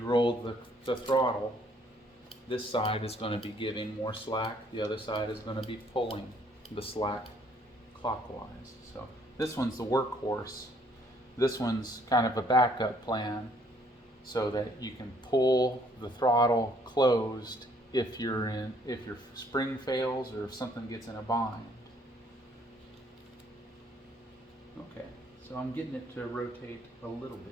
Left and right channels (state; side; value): normal; both; correlation 0.64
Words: roll the throttle, this side is going to be giving more slack, the other side is going to be pulling the slack clockwise. So this one's the workhorse. This one's kind of a backup plan so that you can pull the throttle closed if your spring fails or if something gets in a bind. Okay, so I'm getting it to rotate a little